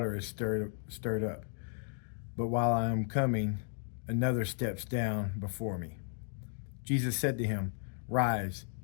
is stirred up. But while I am coming, another steps down before me." Jesus said to him, "Rise,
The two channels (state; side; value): silent; right; digital silence